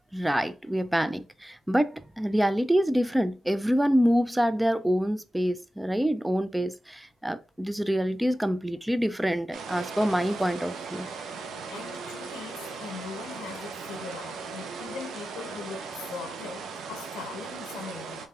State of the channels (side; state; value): both; normal; correlation 0.94